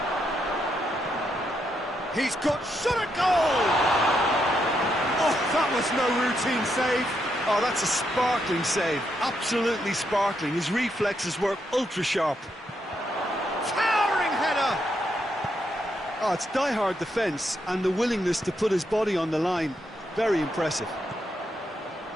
He's got shot at goal! Oh, that was no routine save. Oh, that's a sparkling save. Absolutely sparkling. His reflexes were ultra-sharp. Towering header! Oh, it's die-hard defence and the willingness to put his body on the line. Very impressive.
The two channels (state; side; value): normal; both; correlation 0.79